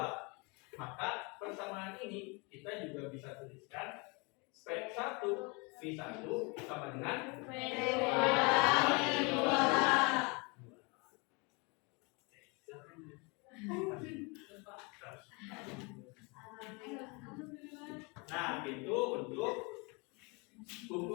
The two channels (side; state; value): right; quieter; 29.8 dB